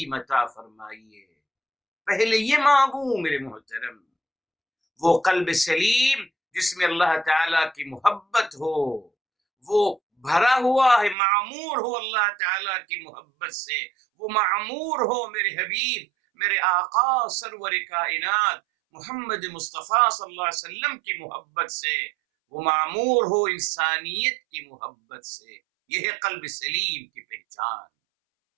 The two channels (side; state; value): left; drops out; at 11.2 s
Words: عطا فرمائیے۔ پہلے یہ مانگوں میرے محترم، وہ قلب سلیم جس میں اللہ تعالیٰ کی محبت ہو، وہ بھرا ہوا ہے، معمور ہو اللہ تعالیٰ کی محبت سے، وہ معمور ہو میرے حبیب میرے آقا سرور کائنات محمد مصطفیٰ صلی اللہ علیہ وسلم کی محبت سے، وہ معمور ہو انسانیت کی محبت سے۔ یہ ہے قلب سلیم کی پہچان۔